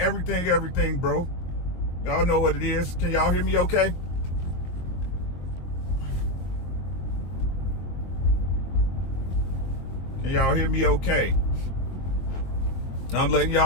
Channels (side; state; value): right; late; 22 ms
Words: bro. Y'all know what it is. Can y'all hear me okay? Can y'all hear me okay? I'm letting